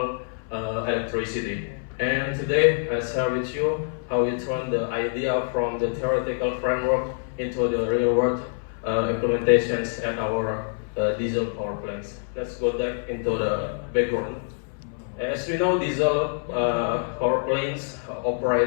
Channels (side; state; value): right; silent; 60 dB below the other